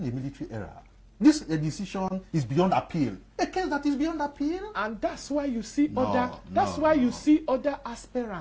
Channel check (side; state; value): both; identical; correlation 1.00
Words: a military era? This decision is beyond appeal. A case that is beyond appeal. And that's why you see No, you see other